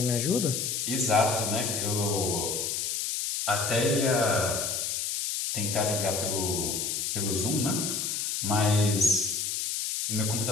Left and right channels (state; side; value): noise; left; hiss, 1 dB below the sound